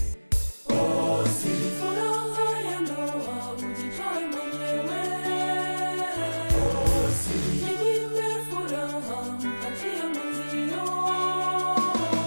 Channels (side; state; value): both; inverted; correlation -1.00